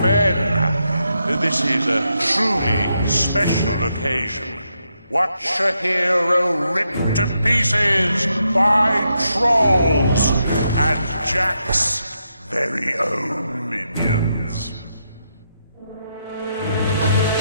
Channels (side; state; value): both; inverted; correlation -0.82